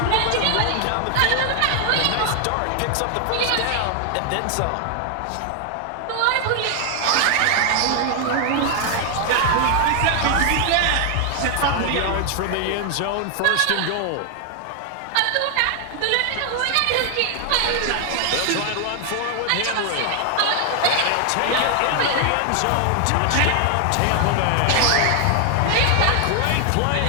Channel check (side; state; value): both; different; correlation 0.00